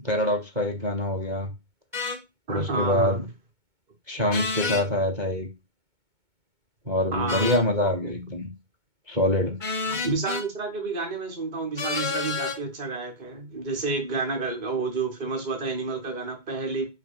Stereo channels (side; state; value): left; late; 2.2 ms